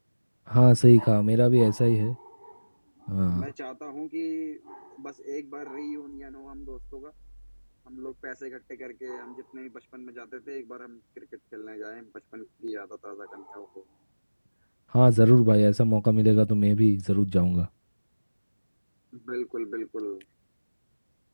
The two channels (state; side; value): inverted; both; correlation -1.00